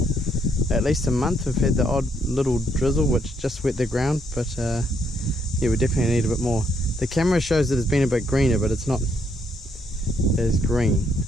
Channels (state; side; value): normal; both; correlation 0.72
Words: at least a month. We've had the odd little drizzle which just wet the ground, but yeah, we definitely need a bit more. The camera shows that it's been a bit greener, but it's not as green.